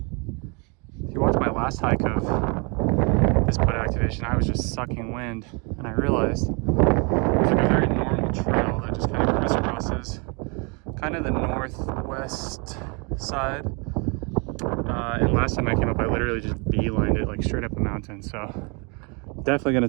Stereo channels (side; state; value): left; quieter; 32.7 dB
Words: if you watch my last hike of this put activation, I was just sucking wind, and I realized it's like a very normal trail that just kind of crisscrosses kind of the northwest side. And last time I came up, I literally just beelined it like straight up a mountain. So definitely